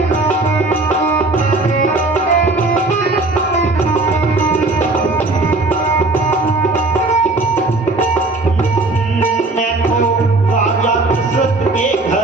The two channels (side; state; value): left; quieter; 3.1 dB